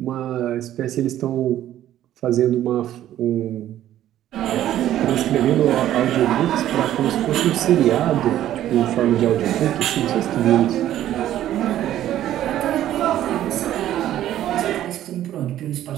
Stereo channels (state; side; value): quieter; left; 12.5 dB